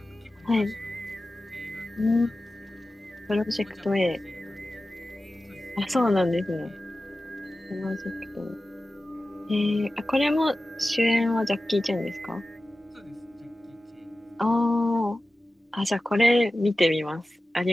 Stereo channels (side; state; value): both; normal; correlation 0.95